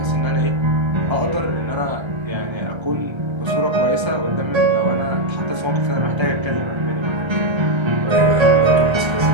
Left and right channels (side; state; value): left; late; 1.3 ms